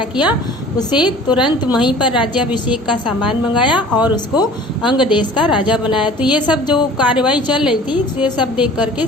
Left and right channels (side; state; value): both; normal; correlation 0.46